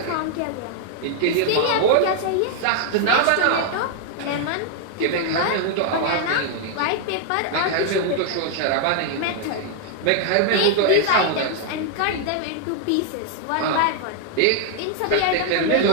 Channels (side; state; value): both; different; correlation 0.00